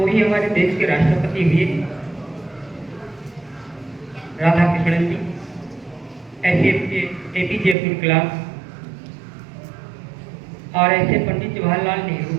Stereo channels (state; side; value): drops out; left; at 7.8 s